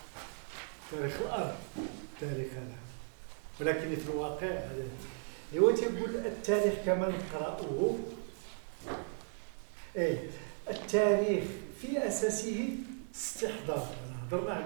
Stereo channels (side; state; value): left; silent; 54 dB below the other